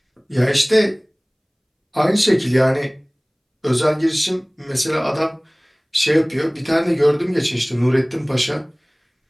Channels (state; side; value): identical; both; correlation 1.00